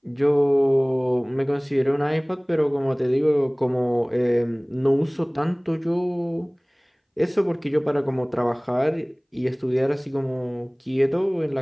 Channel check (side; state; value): both; identical; correlation 1.00